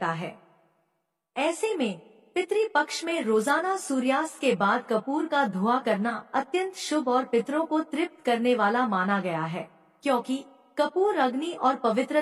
है। ऐसे में पितृ पक्ष में रोजाना सूर्यास्त के बाद कपूर का धुआं करना अत्यंत शुभ और पितरों को तृप्त करने वाला माना गया है, क्योंकि कपूर अग्नि और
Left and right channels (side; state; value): both; identical; correlation 1.00